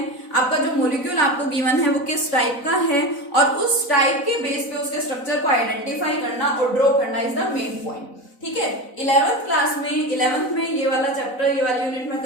आपका जो मॉलिक्यूल आपको गिवन है वो किस टाइप का है, और उस टाइप के बेस पे उसके स्ट्रक्चर को आइडेंटिफाई करना और ड्रॉ करना इज द मेन पॉइंट, ठीक है। 11th क्लास में 11th में ये वाला चैप्टर, ये वाली यूनिट में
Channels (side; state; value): right; late; 4.0 ms